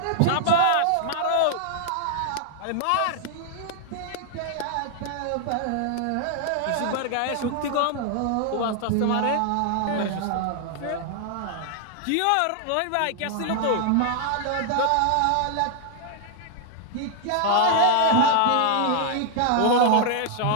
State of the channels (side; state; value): both; different; correlation 0.00